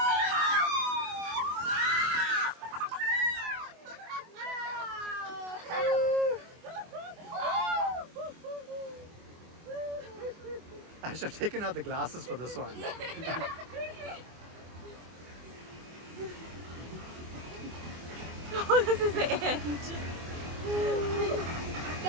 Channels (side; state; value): left; late; 24 ms